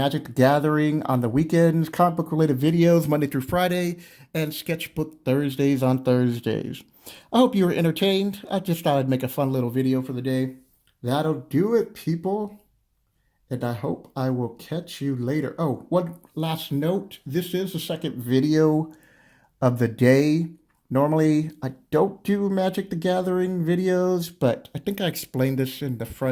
the Gathering on the weekends, comic book related videos Monday through Friday, and sketchbook Thursdays on Thursdays. I hope you were entertained. I just thought I'd make a fun little video for the day. That'll do it, people. And I hope I will catch you later. Oh, one last note. This is the second video of the day. Normally, I don't do Magic the Gathering videos, but I think I explained this in the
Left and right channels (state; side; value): identical; both; correlation 1.00